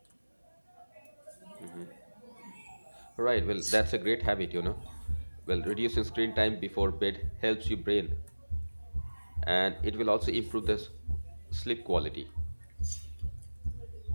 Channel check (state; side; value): inverted; both; correlation -1.00